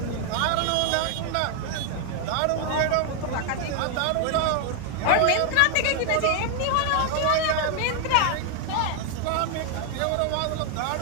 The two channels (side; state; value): both; different; correlation 0.00